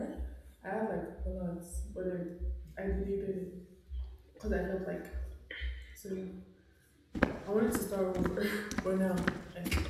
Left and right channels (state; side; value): identical; both; correlation 1.00